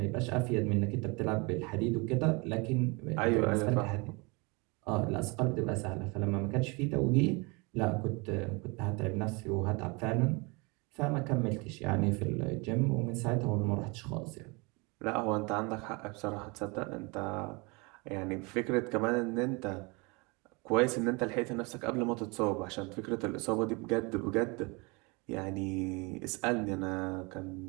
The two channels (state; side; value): quieter; left; 28.3 dB